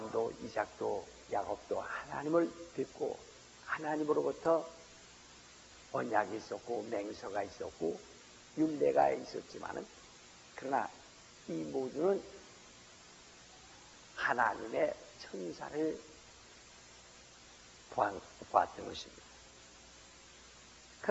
이삭도 야곱도 하나님을 뵙고 하나님으로부터 언약이 있었고 맹서가 있었고 율례가 있었지만은, 그러나 이 모두는 하나님의 천사를 보았던 것입니다.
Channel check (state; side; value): identical; both; correlation 1.00